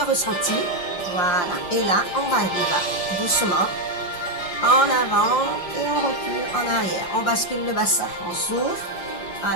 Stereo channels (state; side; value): late; right; 5.7 ms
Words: ressenti. Voilà, et là, on va doucement en avant et on recule en arrière. On bascule le bassin, on souffle.